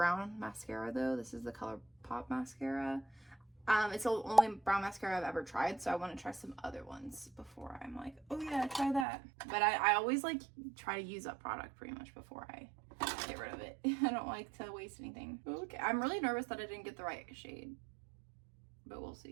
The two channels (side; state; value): left; drops out; at 9.1 s